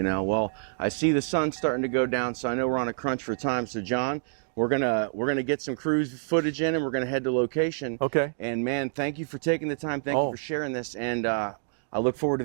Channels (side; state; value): left; silent; digital silence